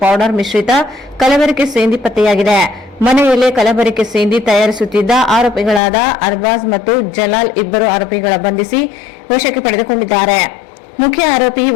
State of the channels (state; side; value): drops out; right; at 5.8 s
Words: ಪೌಡರ್ ಮಿಶ್ರಿತ ಕಲಬೆರಕೆ ಸೇಂದಿ ಪತ್ತೆಯಾಗಿದೆ. ಮನೆಯಲ್ಲೇ ಕಲಬೆರಕೆ ಸೇಂದಿ ತಯಾರಿಸುತ್ತಿದ್ದ ಆರೋಪಿಗಳಾದ ಅರ್ಬಾಜ್ ಮತ್ತು ಜಲಾಲ್ 2 ಆರೋಪಿಗಳ ಬಂಧಿಸಿ ವಶಕ್ಕೆ ಪಡೆದುಕೊಂಡಿದ್ದಾರೆ. ಮುಖ್ಯ ಆರೋಪಿ